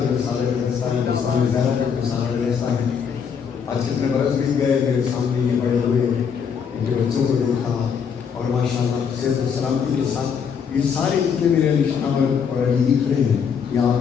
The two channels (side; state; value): right; quieter; 6.9 dB